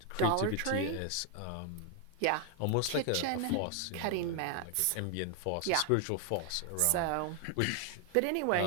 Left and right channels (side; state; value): both; different; correlation 0.01